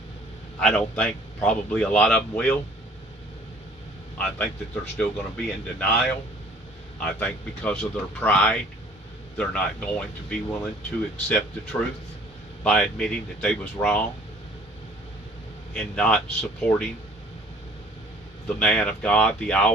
I don't think probably a lot of them will. I think that they're still going to be in denial. I think because of their pride, they're not going to be willing to accept the truth by admitting that they was wrong in not supporting the man of God, the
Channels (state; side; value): normal; both; correlation 0.54